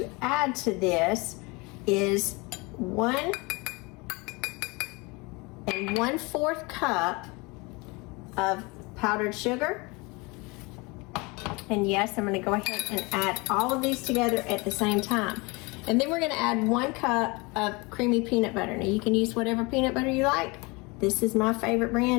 add to this is 1 1/4 cup of powdered sugar. And yes, I'm going to go ahead and add all of these together at the same time. And then we're gonna add 1 cup of creamy peanut butter. Now you can use whatever peanut butter you like. This is my favorite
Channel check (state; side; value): quieter; right; 26.7 dB